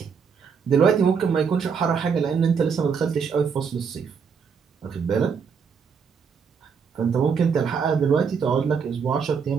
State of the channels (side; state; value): left; quieter; 6.2 dB